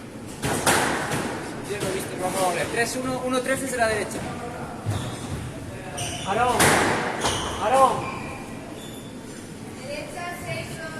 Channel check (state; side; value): identical; both; correlation 1.00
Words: Yo lo he visto, vamos a volver. 3-1, 1-3 desde la derecha. Aarón. Aarón.